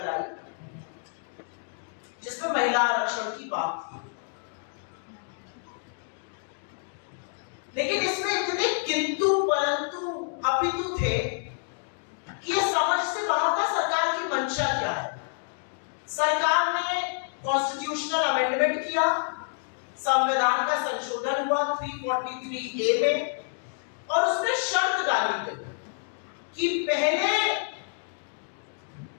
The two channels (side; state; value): right; silent; digital silence